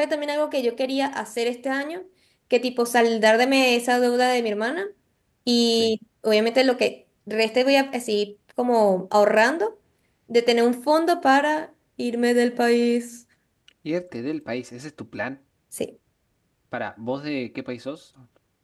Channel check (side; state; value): both; identical; correlation 1.00